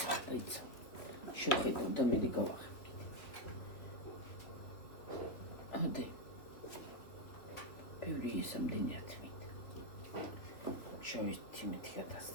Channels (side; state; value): right; late; 3.0 ms